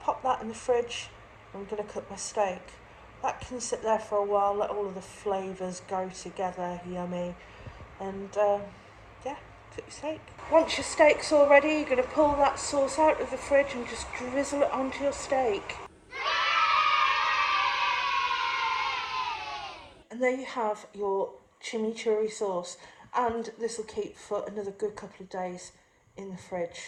that in the fridge. I'm going to cook my steak. That can sit there for a while, let all of the flavours go together, yummy. And yeah, cook your steak. Once your steak's all ready, you're going to pull that sauce out of the fridge and just drizzle it onto your steak. And there you have your chimichurri sauce. And this will keep for another good couple of days in the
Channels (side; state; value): both; identical; correlation 1.00